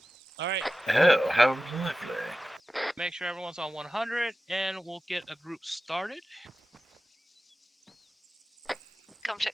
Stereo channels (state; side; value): normal; both; correlation 0.94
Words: All right. Oh, how lovely. Make sure everyone's on 100, and we'll get a group started. Come check